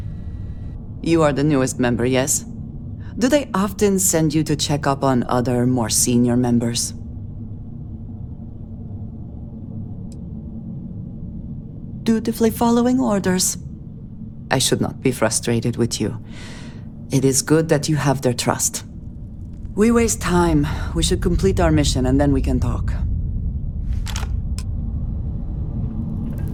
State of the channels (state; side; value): identical; both; correlation 1.00